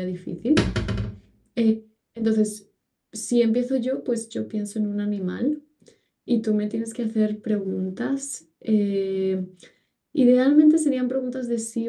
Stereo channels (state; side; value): identical; both; correlation 1.00